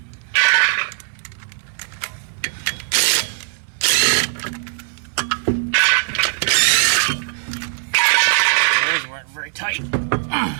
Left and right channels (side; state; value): left; silent; digital silence